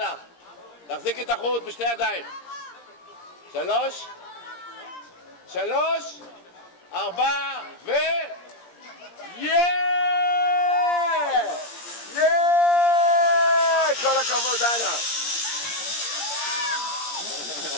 תחזיקי את החוט בשתי ידיים. 3, 4 ו... כל הכבוד, דנה.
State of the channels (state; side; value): late; right; 17 ms